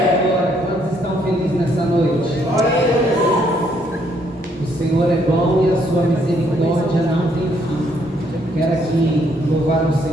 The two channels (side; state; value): both; normal; correlation 0.70